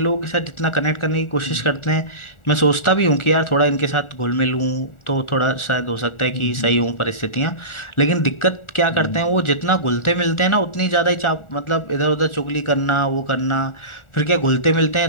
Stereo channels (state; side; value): late; right; 1.4 ms